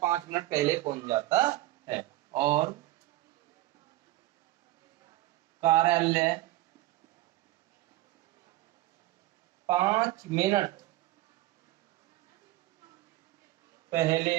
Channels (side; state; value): left; quieter; 16.9 dB